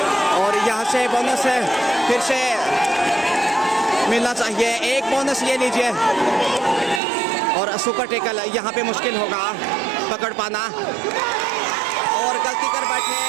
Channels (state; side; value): drops out; left; at 7.0 s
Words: और यहाँ से बोनस फिर से मिलना चाहिए। 1 बोनस ले लीजिए, और सुपर टेकल यहाँ पे मुश्किल होगा पकड़ पाना, और गलती कर बैठे